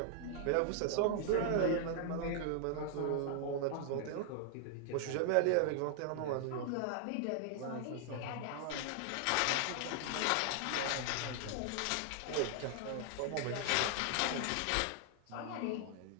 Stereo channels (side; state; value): both; different; correlation 0.00